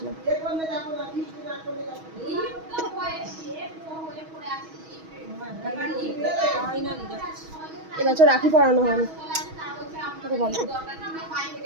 এবছর রাখি পরানো হয়নি।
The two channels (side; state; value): left; late; 6.3 ms